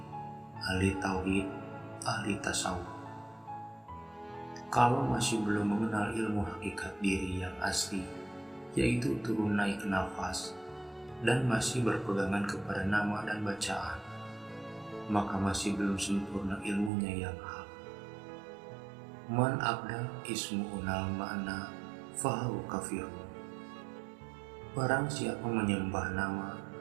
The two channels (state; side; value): drops out; left; at 16.9 s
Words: ahli tauhid, ahli tasawuf. Kalau masih belum mengenal ilmu hakikat diri yang asli, yaitu turun naik nafas, dan masih berpegangan kepada nama dan bacaan, maka masih belum sempurna ilmunya yang hak. Man abda ismu unal ma'na fahu kafirun. Barang siapa menyembah nama,